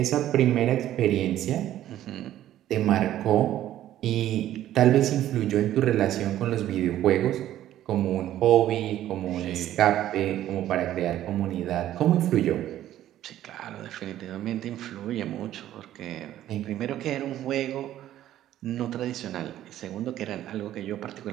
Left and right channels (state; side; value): quieter; left; 12.7 dB